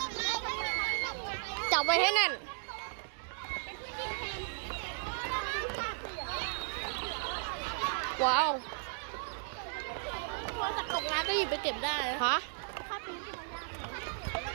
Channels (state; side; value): silent; left; digital silence